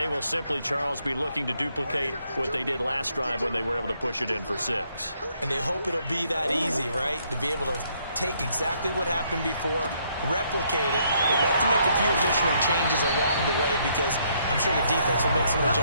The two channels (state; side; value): inverted; both; correlation -0.71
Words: will simply, Charles, be looking to duplicate what they did last drive when they were able to push it in for 6. And they hope it'll be that easy, right? To be able to take exactly what happened before, replicate it. They have to make a few additional changes along the way because I'm sure the defense will make some